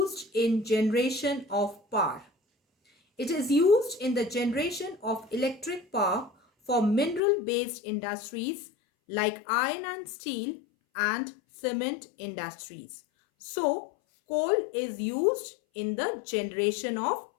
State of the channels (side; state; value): right; drops out; at 7.2 s